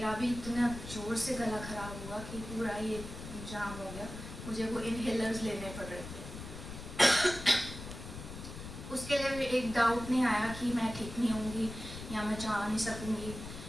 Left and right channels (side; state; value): left; noise; rumble, 10 dB below the sound